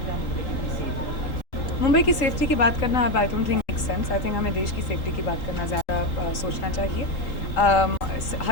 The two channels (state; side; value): late; right; 3.8 ms